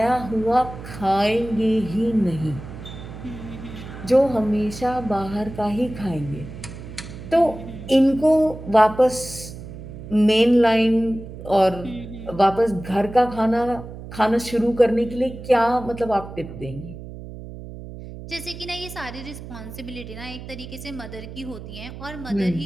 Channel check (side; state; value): right; noise; hum, 12 dB below the sound